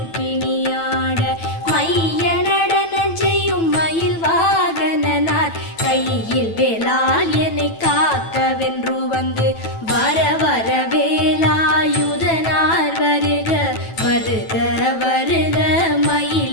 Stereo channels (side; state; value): right; late; 9.1 ms